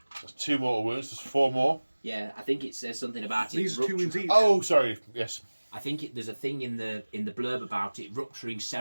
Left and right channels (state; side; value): inverted; both; correlation -1.00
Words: That's 2 mortal wounds. There's 4 more. Yeah, I think it says something about it. These are 2 wins each. Oh, sorry. Yes. I think there's a thing in the blurb about it rupturing